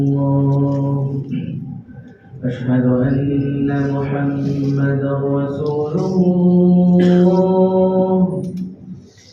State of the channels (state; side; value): identical; both; correlation 1.00